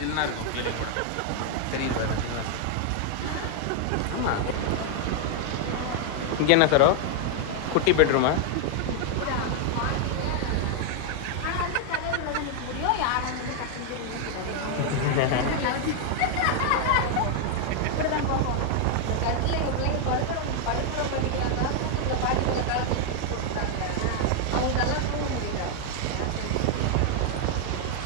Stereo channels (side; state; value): both; different; correlation 0.00